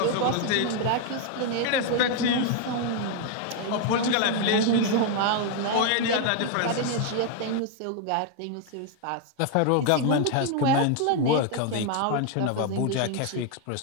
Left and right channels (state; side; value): different; both; correlation 0.00